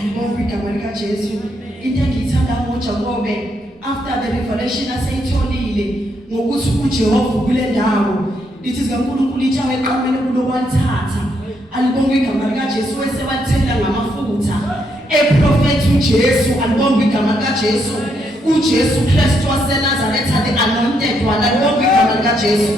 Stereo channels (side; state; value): both; normal; correlation 0.76